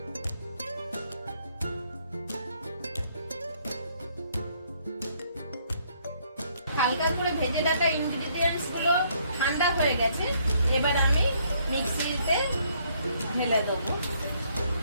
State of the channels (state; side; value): inverted; both; correlation -0.68